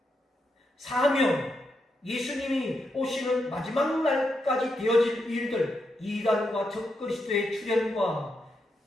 사명, 예수님이 오시는 마지막 날까지 되어질 일들, 이단과 적그리스도의 출현과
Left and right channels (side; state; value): both; normal; correlation 0.83